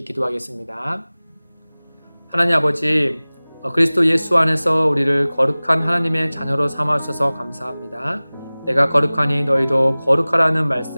기도하겠습니다. 하나님 아버지, 그리스도 예수 안에서 우리를 거룩한 하나님의 자녀로 삼아주셔서 감사합니다. 내가 거룩하니 너희도 거룩하라는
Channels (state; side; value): inverted; both; correlation -0.99